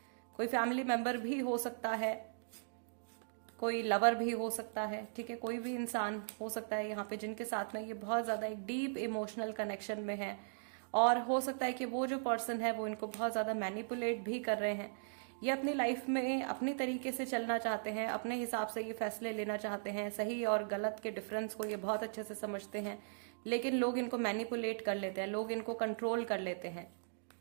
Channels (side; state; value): left; silent; digital silence